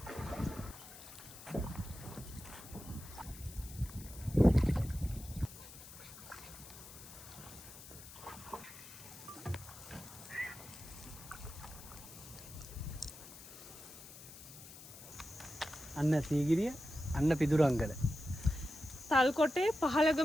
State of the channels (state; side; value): noise; left; hiss, 16 dB below the sound